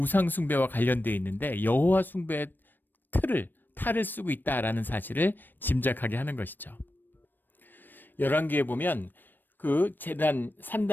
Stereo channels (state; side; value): late; right; 0.092 ms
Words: 숭배와 관련되어 있는데 여호와 숭배의 탈을 쓰고 있다라는 사실을 짐작하게 하는 것이죠. 열왕기에 보면 제단